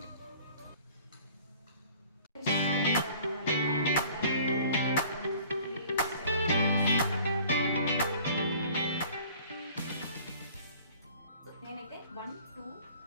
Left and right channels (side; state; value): both; inverted; correlation -0.50